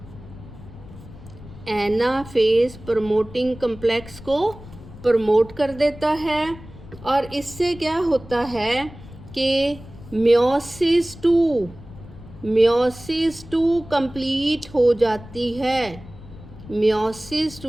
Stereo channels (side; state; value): left; noise; rumble, 17 dB below the sound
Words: anaphase promoting complex को प्रमोट कर देता है। और इससे क्या होता है कि मियोसिस 2 कंप्लीट हो जाती है, मियोसिस